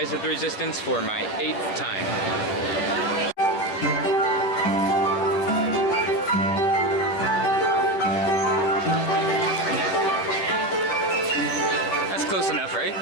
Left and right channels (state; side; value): late; right; 10 ms